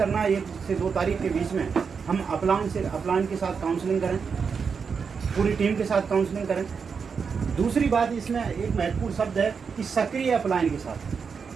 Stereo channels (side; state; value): left; quieter; 5.9 dB